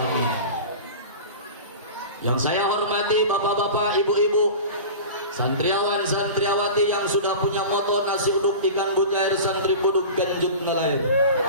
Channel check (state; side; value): inverted; both; correlation -0.33